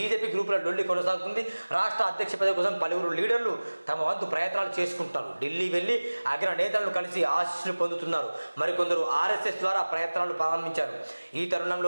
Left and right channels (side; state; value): both; inverted; correlation -1.00